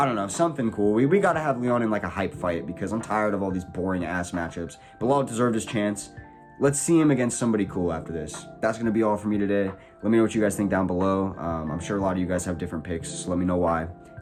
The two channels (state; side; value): identical; both; correlation 1.00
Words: don't know, something cool. We got to have Leon in like a hype fight, because I'm tired of all these boring ass matchups. Bilal deserved his chance. Let's see him against somebody cool after this. That's going to be all for me today. Let me know what you guys think down below. I'm sure a lot of you guys have different picks, so let me know why.